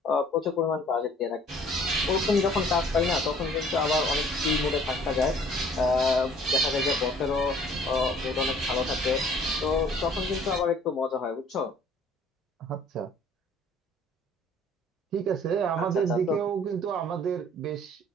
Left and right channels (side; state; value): both; normal; correlation 0.55